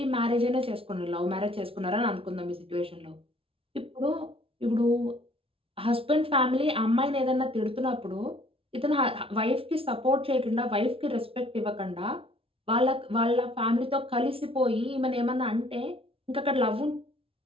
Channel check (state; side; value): late; left; 0.26 ms